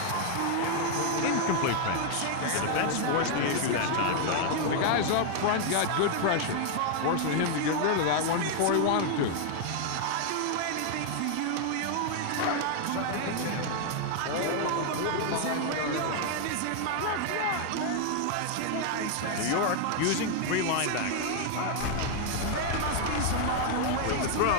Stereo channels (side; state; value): both; different; correlation 0.00